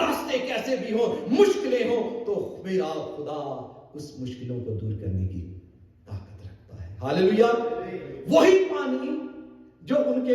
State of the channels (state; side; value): identical; both; correlation 1.00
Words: कैसे भी हो, मुश्किलें हो, तो मेरा खुदा उस मुश्किलों को दूर करने की ताकत रखता है। हालेलुया। वही पानी जो उनके